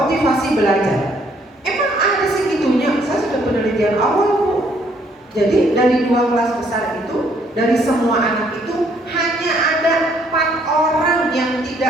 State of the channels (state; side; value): normal; both; correlation 0.66